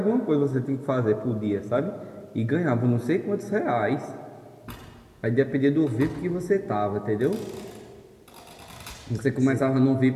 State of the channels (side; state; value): both; identical; correlation 1.00